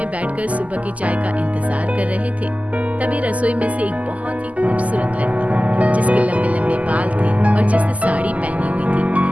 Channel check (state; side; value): late; left; 0.072 ms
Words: बैठकर सुबह की चाय का इंतजार कर रहे थे। तभी रसोई में से एक बहुत ही खूबसूरत लड़की जिसके लंबे लंबे बाल थे और जिसने साड़ी पहनी हुई थी,